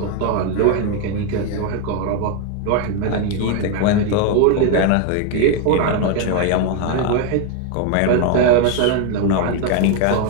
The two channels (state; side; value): different; both; correlation 0.01